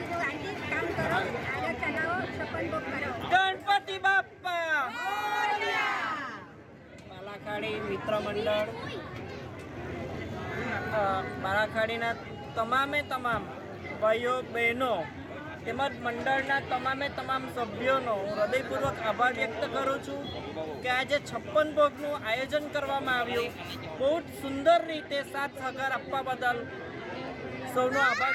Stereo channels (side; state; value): both; identical; correlation 1.00